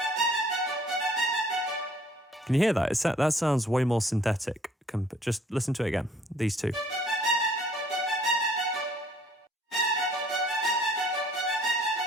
Can you hear that? That sounds way more synthetic. Just listen to it again, these two.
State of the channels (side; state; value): both; normal; correlation 0.58